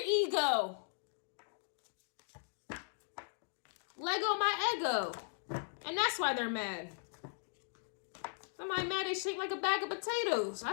ego. Lego my ego. And that's why they're mad. Somebody mad they shaped like a bag of potatoes. I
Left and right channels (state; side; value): silent; right; digital silence